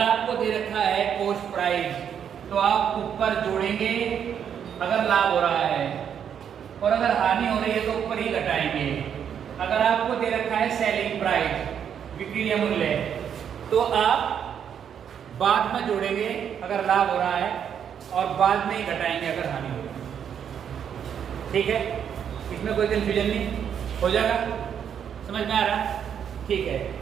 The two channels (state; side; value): quieter; left; 8.3 dB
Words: आपको दे रखा है कॉस्ट प्राइस, तो आप ऊपर जोड़ेंगे अगर लाभ हो रहा है, और अगर हानि हो रही है तो ऊपर ही घटाएंगे। अगर आपको दे रखा है सेलिंग प्राइस, विक्रय मूल्य, तो आप बाद में जोड़ेंगे अगर लाभ हो रहा है, और बाद में ही घटाएंगे अगर हानि हो रही है। ठीक है, इसमें कोई कंफ्यूजन नहीं हो जाएगा? समझ में आ रहा है? ठीक है,